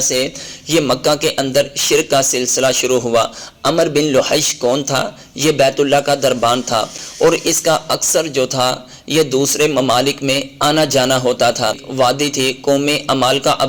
سے یہ مکہ کے اندر شرک کا سلسلہ شروع ہوا۔ عمر بن لحیج کون تھا؟ یہ بیت اللہ کا دربان تھا، اور اس کا اکثر جو تھا یہ دوسرے ممالک میں آنا جانا ہوتا تھا۔ وادی تھی، قوم عمالقہ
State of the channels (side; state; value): both; identical; correlation 1.00